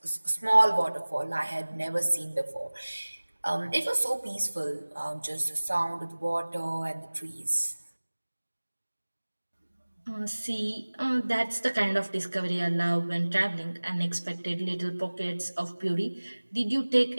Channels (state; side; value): inverted; both; correlation -1.00